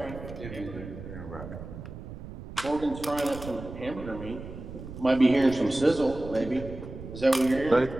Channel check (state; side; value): noise; right; rumble, 12 dB below the sound